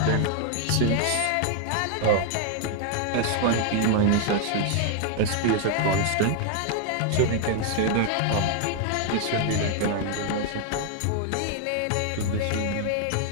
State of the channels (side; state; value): both; different; correlation 0.00